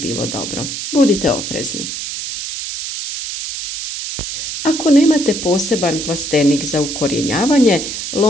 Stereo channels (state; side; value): noise; right; hiss, 6 dB below the sound